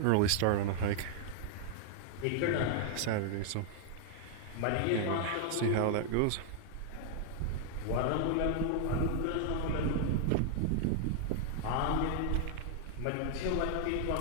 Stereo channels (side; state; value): both; different; correlation 0.00